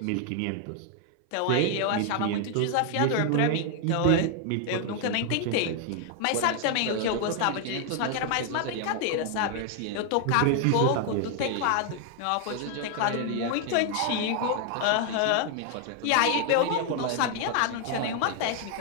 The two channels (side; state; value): both; different; correlation 0.00